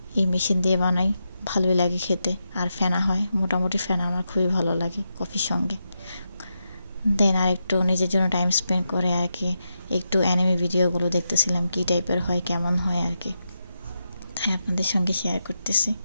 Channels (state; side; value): inverted; both; correlation -0.86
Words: এই মেশিন দিয়ে বানাই, ভালোই লাগে খেতে আর ফেনা হয়। মোটামুটি ফেনা আমার খুবই ভালো লাগে কফির সঙ্গে। দেন আর একটু নিজের জন্য টাইম স্পেন্ড করে আর কি একটু অ্যানিমে ভিডিওগুলো দেখতেছিলাম, কী টাইপের হয় কেমন হয় আর কি, তাই আপনাদের সঙ্গে শেয়ার করতেছি।